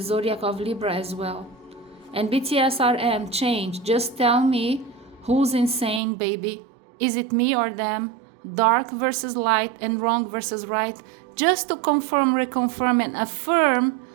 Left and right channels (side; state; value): left; drops out; at 6.0 s